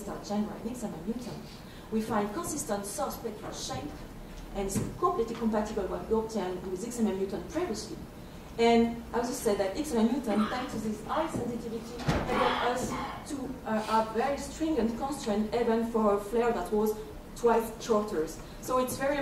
Chandra, and Alexander Newton, we find consistent source spectral shape, and it's completely compatible with what we obtained with XMM Newton previously. And I also said that XMM Newton, thanks to this high sensitivity, enabled us to have very stringent constraint even for a flare that was twice shorter. So it's very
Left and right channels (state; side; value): identical; both; correlation 1.00